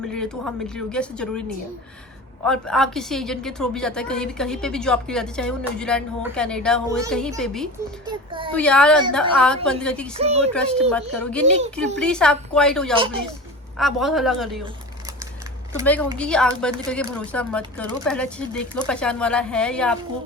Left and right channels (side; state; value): both; normal; correlation 0.33